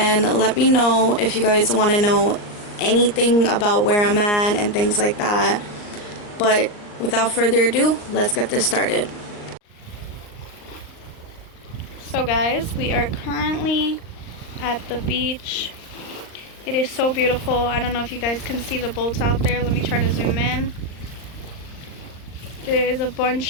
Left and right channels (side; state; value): right; late; 39 ms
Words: let me know if you guys want to know anything about where I'm at and things like that. But without further ado, let's get this started. So guys, we are currently at the beach. It is so beautiful. I don't know if you guys can see the boats out there. Let me try to zoom in. There is a